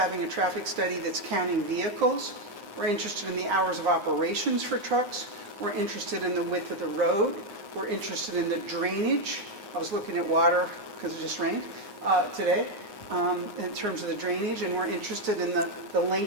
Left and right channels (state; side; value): late; left; 9.7 ms